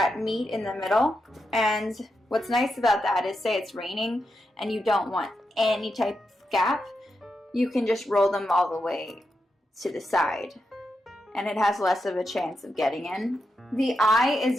meet in the middle, and what's nice about that is, say it's raining and you don't want any type of gap, you can just roll them all the way to the side, and it has less of a chance of getting in. The eye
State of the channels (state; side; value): normal; both; correlation 0.86